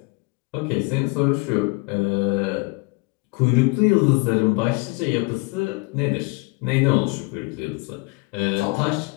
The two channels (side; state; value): right; quieter; 27.3 dB